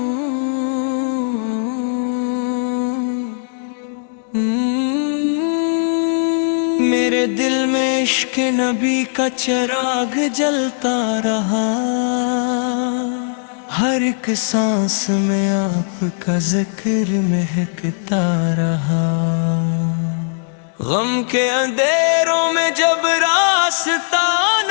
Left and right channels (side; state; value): right; silent; digital silence